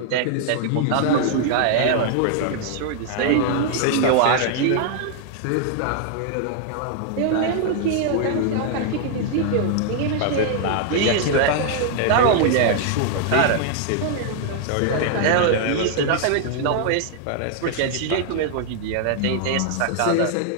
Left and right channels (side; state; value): both; different; correlation 0.00